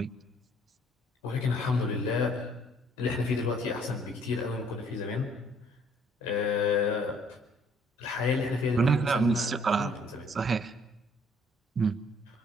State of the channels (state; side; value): normal; both; correlation 0.61